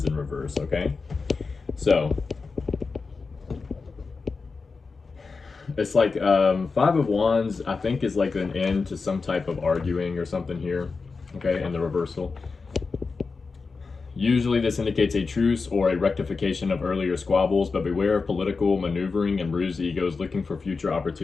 in reverse, okay? So, it's like Five of Wands, I think, is like an end to some type of arguing or something here, okay, in the reversal. Usually this indicates a truce or a rectification of earlier squabbles, but beware of political maneuvering and bruised egos looking for future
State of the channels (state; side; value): quieter; right; 4.5 dB